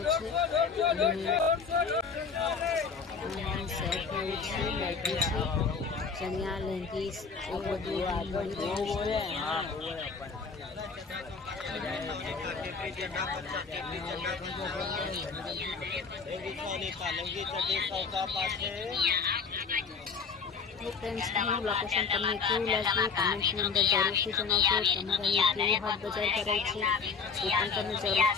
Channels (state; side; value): quieter; right; 5.4 dB